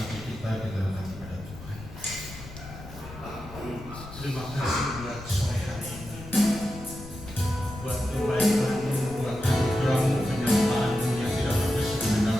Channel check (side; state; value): left; noise; rumble, 14 dB below the sound